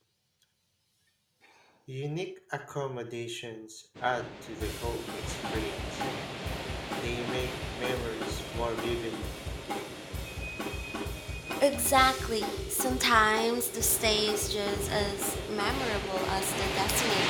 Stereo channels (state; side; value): identical; both; correlation 1.00